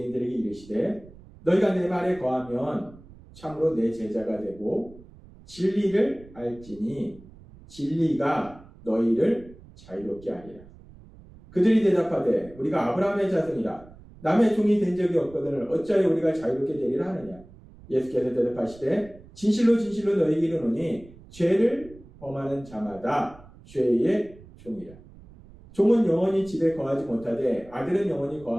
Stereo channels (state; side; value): noise; right; rumble, 21 dB below the sound